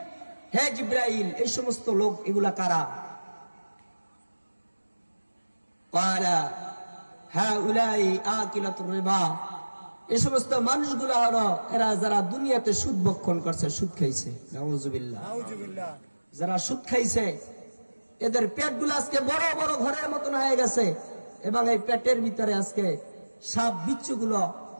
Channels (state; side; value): inverted; both; correlation -1.00